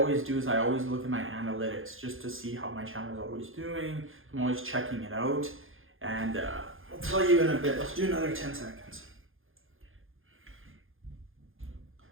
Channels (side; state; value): left; late; 0.59 ms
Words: do is I always look at my analytics just to see how my channel is always doing. I'm always checking it out. And I'll tell you in a bit. Let's do another 10 seconds.